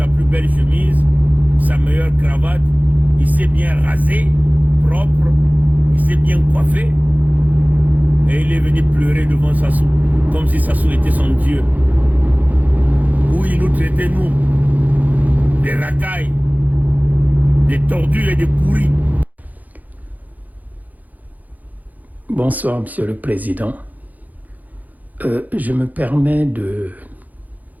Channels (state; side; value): late; left; 0.081 ms